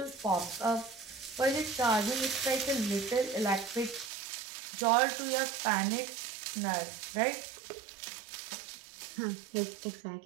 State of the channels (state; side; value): drops out; left; at 4.1 s